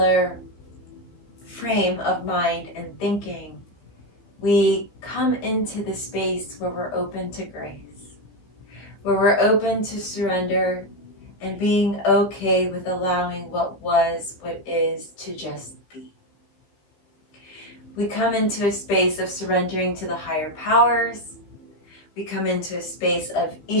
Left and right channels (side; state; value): right; late; 15 ms